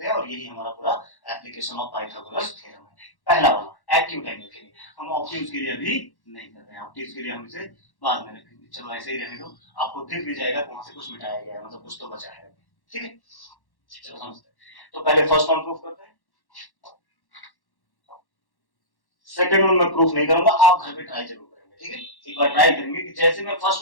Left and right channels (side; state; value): right; late; 1.1 ms